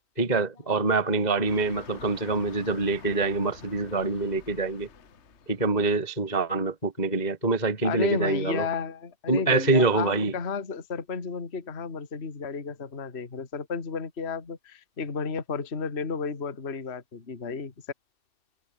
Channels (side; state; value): right; late; 2.6 ms